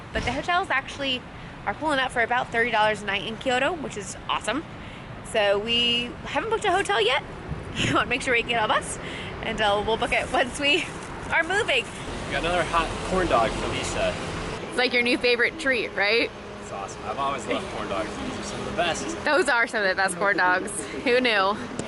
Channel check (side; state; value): both; identical; correlation 1.00